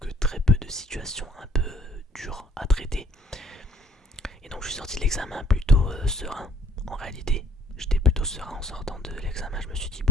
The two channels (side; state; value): both; normal; correlation 0.62